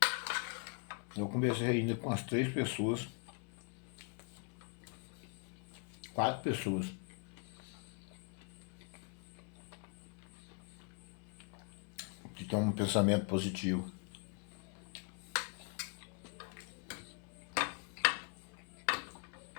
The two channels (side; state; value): right; quieter; 36.8 dB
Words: Eu conversei ainda com as 3 pessoas, 4 pessoas, que têm um pensamento positivo.